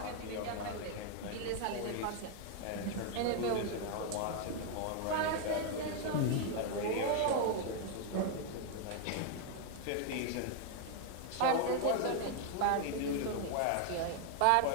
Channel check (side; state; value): both; different; correlation 0.00